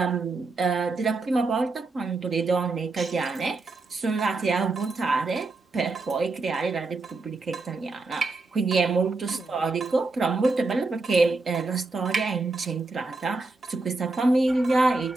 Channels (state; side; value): quieter; left; 3.5 dB